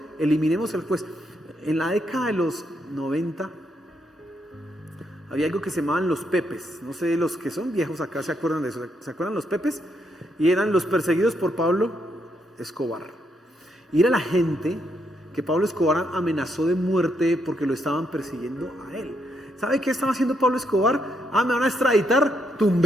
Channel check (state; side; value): normal; both; correlation 0.77